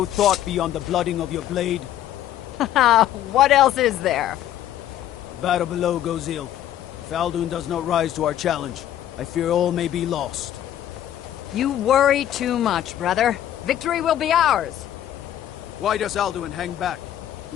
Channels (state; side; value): quieter; right; 11.7 dB